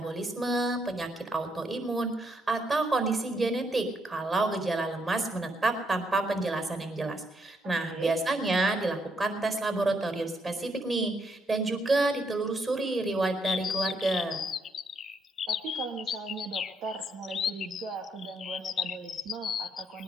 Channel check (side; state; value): both; normal; correlation 0.75